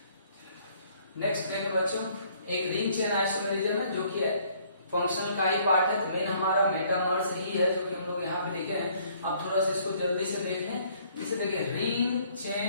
नेक्स्ट देखो बच्चों, एक रिंग चेन आइसोमेरिज्म है जो कि फंक्शनल का ही पार्ट है, तो मेन हमारा मेटामर्स ही है जो कि हम लोग यहाँ पे लिखे हैं। आप थोड़ा सा इसको जल्दी से देख लें। इसे देखिए रिंग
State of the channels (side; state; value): both; inverted; correlation -0.62